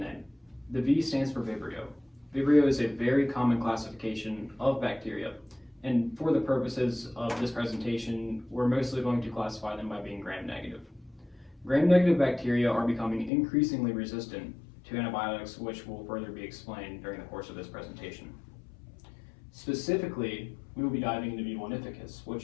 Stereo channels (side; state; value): right; drops out; at 13.3 s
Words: The V stands for Vibrio. Vibrio is a very common classification of bacteria, and for the purposes of this presentation, we're mostly going to classify them by being gram-negative. Gram-negative bacteria are becoming increasingly resistant to antibiotics, which will further be explained during the course of this presentation. Specifically, we will be diving into V. vulnificus,